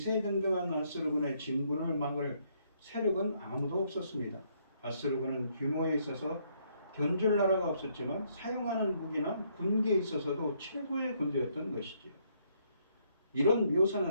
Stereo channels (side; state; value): both; inverted; correlation -0.71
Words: 아수르군의 진군을 막을 세력은 아무도 없었습니다. 아수르군은 규모에 있어서 견줄 나라가 없었지만 사용하는 무기나 군기에 있어서도 최고의 군대였던 것이지요. 이런